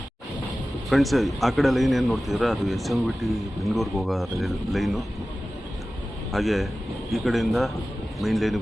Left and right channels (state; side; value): normal; both; correlation 0.96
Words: Friends, ಆ ಕಡೆ ಲೈನ್ ಏನು ನೋಡ್ತಿದ್ರೆ ಅದು SMVT ಬೆಂಗಳೂರಿಗೆ ಹೋಗೋ ಲೈನು. ಹಾಗೆ ಈ ಕಡೆಯಿಂದ ಮೈನ್